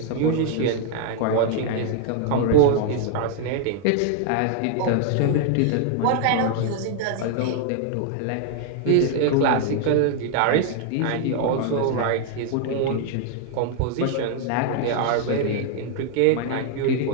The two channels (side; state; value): both; different; correlation 0.00